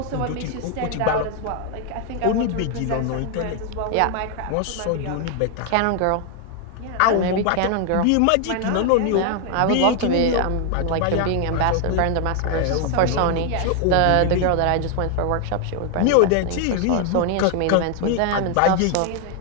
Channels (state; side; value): different; both; correlation 0.00